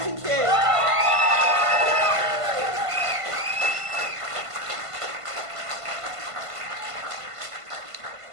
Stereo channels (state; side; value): late; left; 1.5 ms